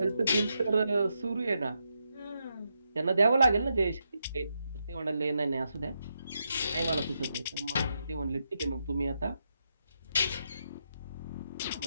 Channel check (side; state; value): both; inverted; correlation -0.83